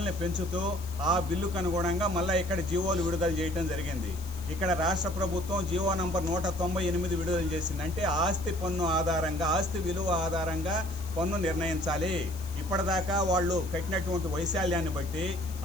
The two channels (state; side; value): noise; left; hiss, 17 dB below the sound